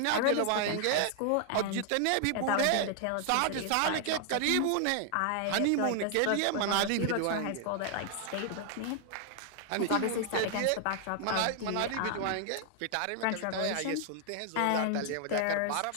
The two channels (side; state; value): both; different; correlation 0.00